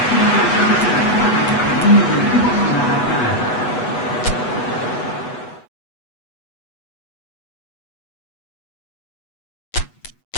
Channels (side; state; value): right; late; 8.1 ms